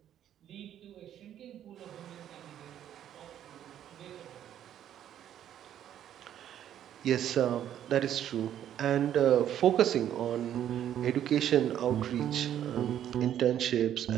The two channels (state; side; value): quieter; left; 10.6 dB